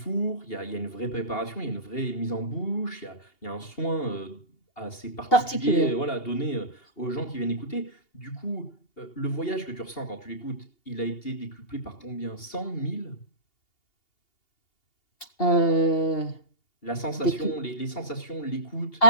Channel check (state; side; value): late; right; 2.8 ms